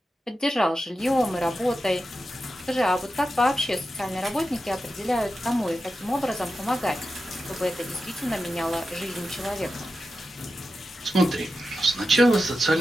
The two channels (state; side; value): normal; both; correlation 0.91